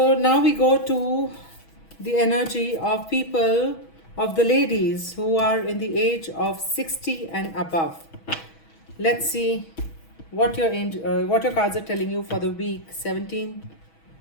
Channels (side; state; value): right; late; 6.2 ms